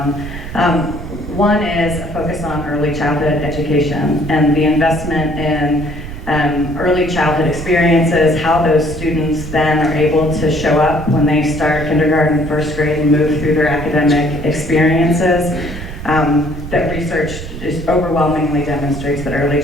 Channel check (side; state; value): right; noise; rumble, 10 dB below the sound